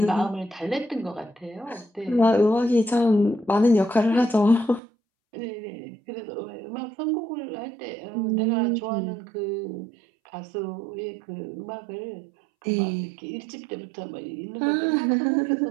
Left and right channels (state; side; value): drops out; left; at 4.8 s